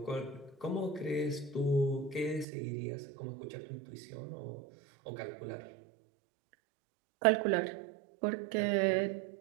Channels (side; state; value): left; drops out; at 2.5 s